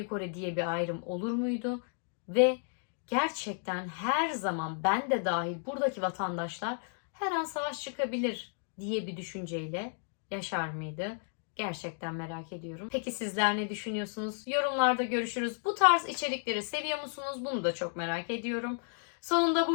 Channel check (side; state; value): right; silent; 56 dB below the other